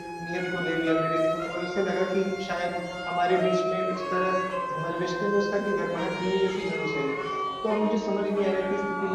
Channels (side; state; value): both; identical; correlation 1.00